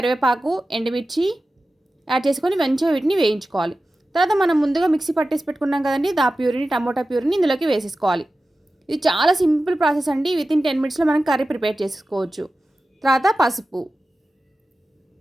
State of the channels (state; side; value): normal; both; correlation 0.94